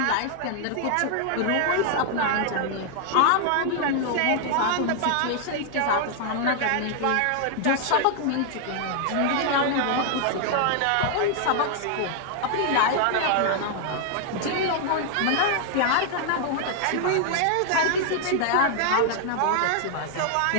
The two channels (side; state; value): both; different; correlation 0.00